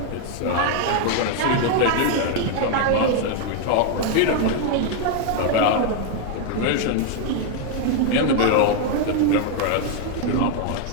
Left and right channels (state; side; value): different; both; correlation 0.01